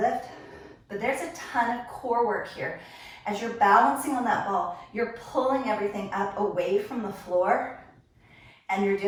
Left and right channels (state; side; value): identical; both; correlation 1.00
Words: but there's a ton of core work here. As you're balancing on that ball, you're pulling everything up away from the floor and you're